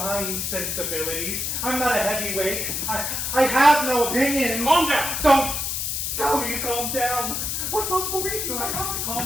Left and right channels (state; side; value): noise; left; hiss, 2 dB below the sound